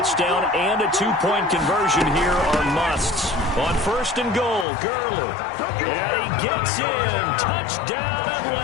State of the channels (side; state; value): right; drops out; at 4.7 s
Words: and a 2-point conversion here are musts. On 1st and goal, Gurley. And he gets in. Touchdown,